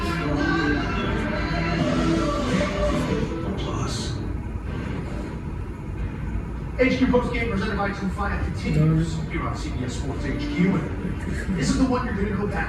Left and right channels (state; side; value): identical; both; correlation 1.00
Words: HQ postgame presented by Tufaya continues here on CBS Sports HQ. And this is the one you're going to go